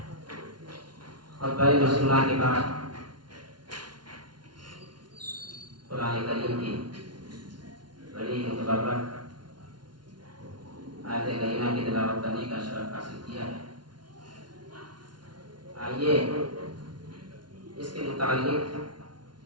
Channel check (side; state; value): left; late; 0.70 ms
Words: خطبہ مسلمہ کے بعد قرآن کریم کی بڑی متبرک آیت کریمہ کی تلاوت کرنے کا شرف حاصل کیا ہے۔ آئیے اس کے متعلق